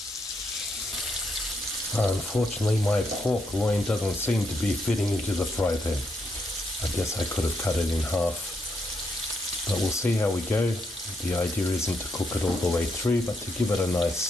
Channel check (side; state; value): both; normal; correlation 0.78